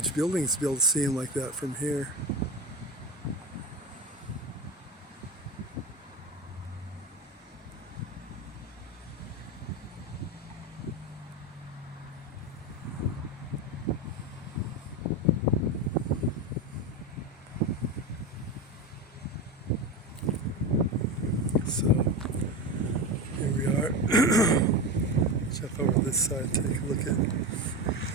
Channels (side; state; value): both; normal; correlation 0.19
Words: buildings to be able to see them like that from here. So here we are. Jump over this side, take a look at